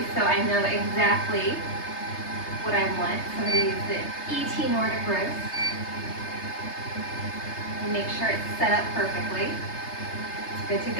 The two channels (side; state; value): right; late; 3.3 ms